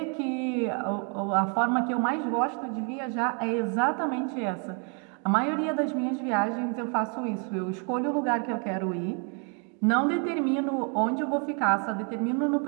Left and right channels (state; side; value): quieter; left; 38.5 dB